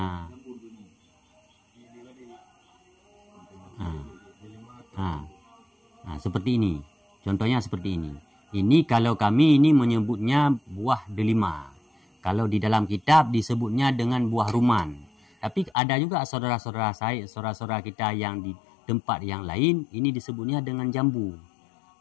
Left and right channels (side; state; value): right; drops out; at 15.7 s